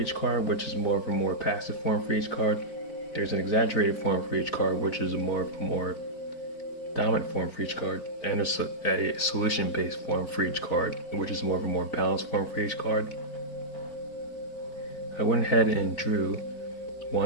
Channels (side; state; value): right; late; 4.4 ms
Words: card, which is more of a more passive form for each card. There's an exaggerated form for each card, which is a more dominant form for each card, and a solution-based form for each card, which is more of a more balanced form for each card. I went ahead and drew